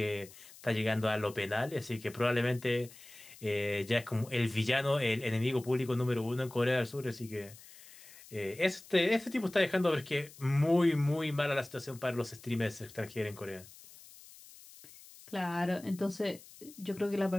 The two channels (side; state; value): left; noise; hiss, 20 dB below the sound